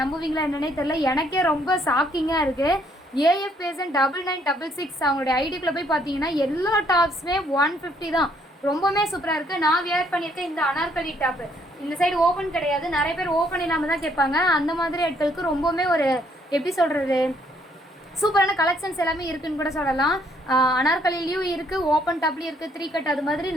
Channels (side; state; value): both; normal; correlation 0.68